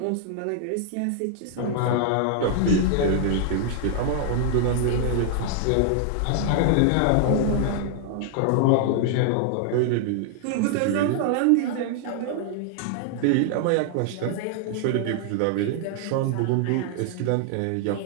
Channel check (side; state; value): both; different; correlation 0.00